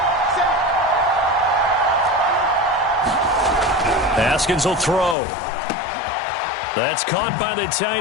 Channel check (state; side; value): drops out; right; at 5.2 s